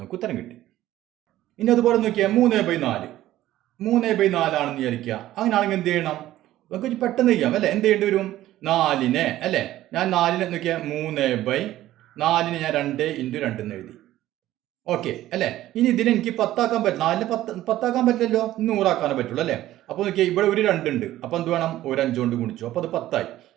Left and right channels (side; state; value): left; quieter; 14.4 dB